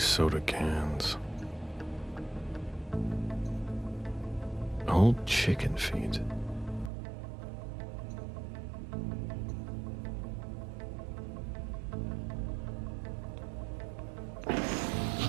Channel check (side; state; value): left; drops out; at 6.9 s